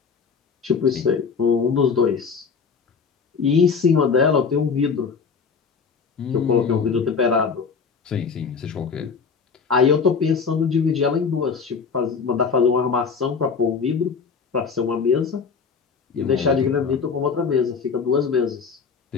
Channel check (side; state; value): right; quieter; 5.6 dB